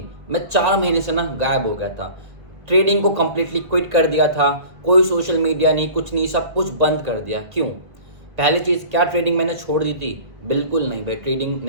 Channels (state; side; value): late; left; 1.8 ms